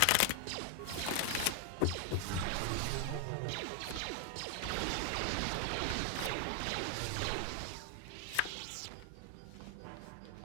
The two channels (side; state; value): both; different; correlation 0.00